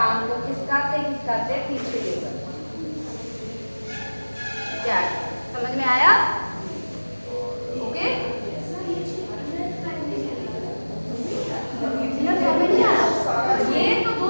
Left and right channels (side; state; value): both; inverted; correlation -1.00